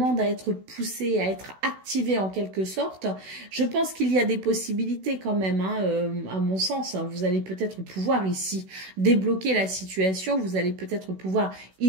à être poussé, à être activé en quelque sorte. Je pense qu'il y a des possibilités quand même, hein, à mon sens. Vous allez peut-être pouvoir ici débloquer la situation. Vous allez peut-être pouvoir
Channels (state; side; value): late; left; 16 ms